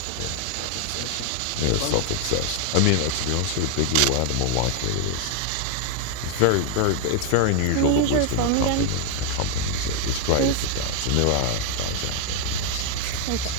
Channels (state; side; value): different; both; correlation 0.00